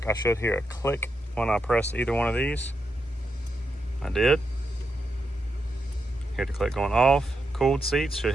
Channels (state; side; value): normal; both; correlation 0.84